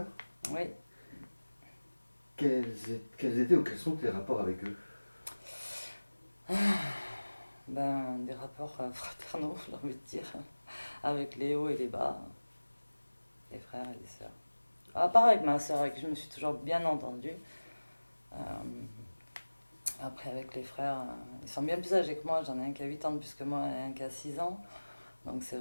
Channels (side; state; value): both; inverted; correlation -1.00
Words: Oui. Quels étaient ou quels sont tes rapports avec eux? Ben, des rapports fraternaux, j'ai envie de dire, avec les hauts et les bas, les frères et les sœurs. À part avec ma sœur, avec qui je me suis toujours bien entendue. Euh, Après, avec les frères, ils sont bien plus âgés que moi. J'en ai un qui a 8 ans de plus que moi et un qui a 6 ans. Donc c'est